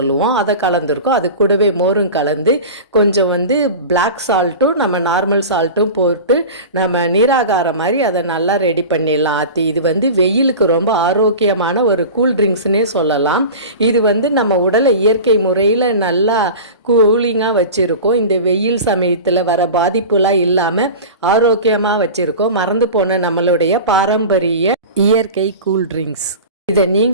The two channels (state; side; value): inverted; both; correlation -0.32